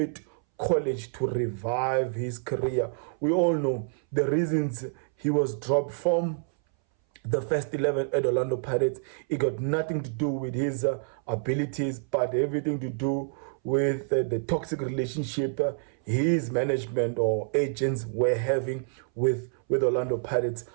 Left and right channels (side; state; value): left; silent; 60 dB below the other